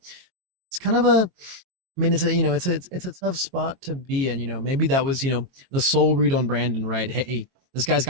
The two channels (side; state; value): left; late; 22 ms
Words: It's kind of a I mean, it's a tough spot to be in. You know, maybe that was the soul read on Brandon, right? Hey, this guy's